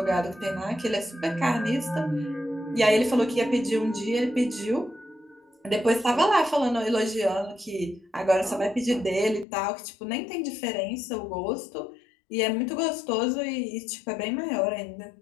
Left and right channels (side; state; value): right; drops out; at 9.5 s